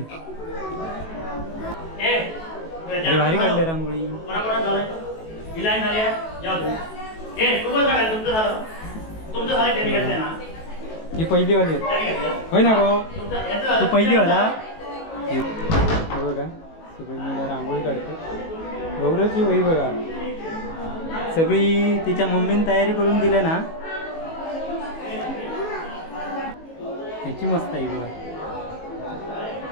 अरे भारी काढले रांगोळी. ही पहिली वाली होय ना गो तू पहिली वाला. हे बघा सगळी मुलं रांगोळी काढते. गौरवची वही बघा सगळी तिच्या मम्मीने तयारी करून दिल्या ना. ह्याची मस्त आहे बघा.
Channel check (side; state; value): right; late; 18 ms